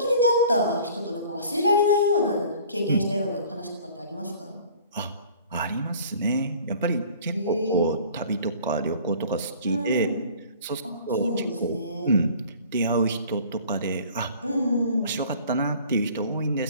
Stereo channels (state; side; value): inverted; both; correlation -0.49